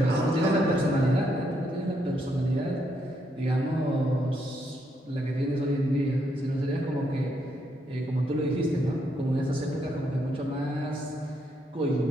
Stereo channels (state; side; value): normal; both; correlation 0.76